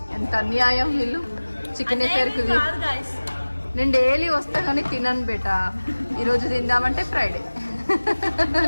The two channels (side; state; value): both; inverted; correlation -1.00